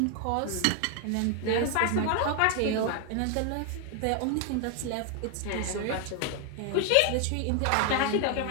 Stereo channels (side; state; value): both; different; correlation 0.00